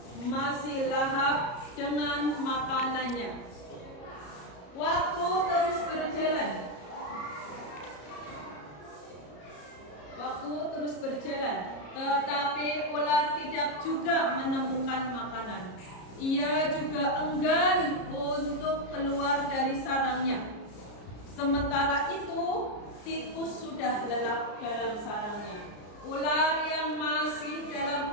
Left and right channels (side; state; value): right; late; 33 ms